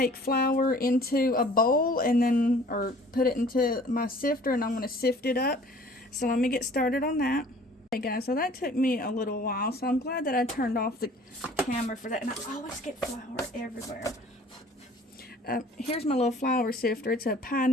flour into a bowl and then, or put it into my sifter, and I'm going to sift it up. So let me get started on that. Okay guys, so that took me a little while, so I'm glad that I turned off the camera for that. And I always get flour everywhere. Here's my little flour sifter. It's a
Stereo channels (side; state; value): both; normal; correlation 0.51